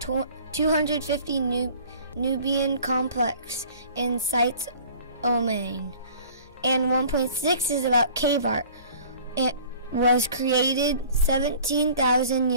250 Nubian complex in sites Oman. And 1.6 is about cave art. It was created 17,000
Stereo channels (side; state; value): both; inverted; correlation -0.48